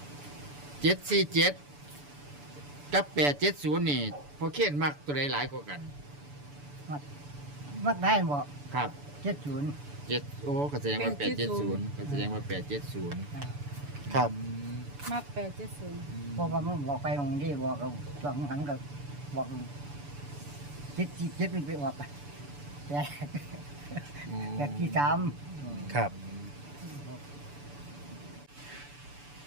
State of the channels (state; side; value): late; left; 6.9 ms